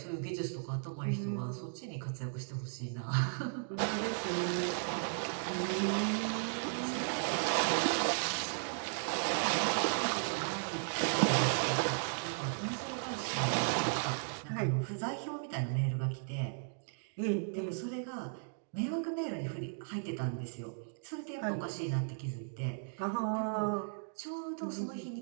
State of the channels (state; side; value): silent; left; digital silence